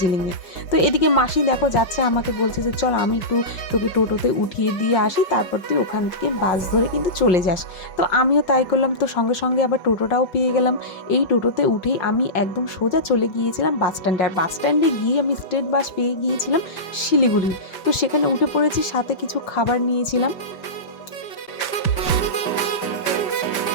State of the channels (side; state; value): right; late; 5.5 ms